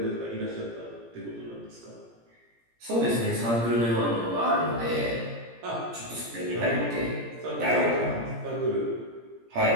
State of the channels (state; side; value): late; left; 17 ms